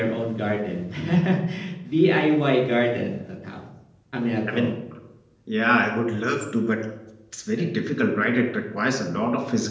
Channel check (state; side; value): identical; both; correlation 1.00